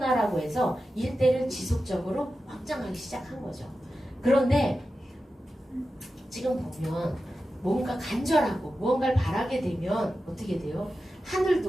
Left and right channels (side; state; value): both; normal; correlation 0.92